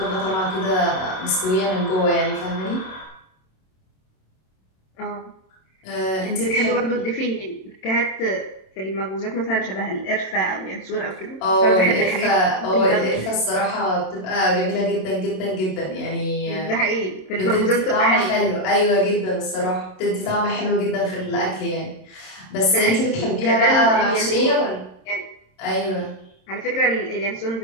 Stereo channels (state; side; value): late; right; 27 ms